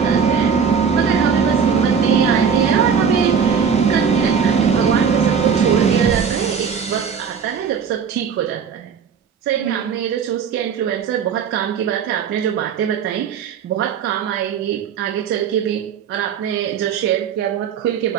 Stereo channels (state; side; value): quieter; left; 6.8 dB